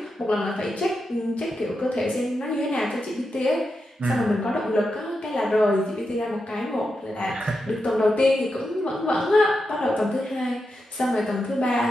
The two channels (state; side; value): normal; both; correlation 0.87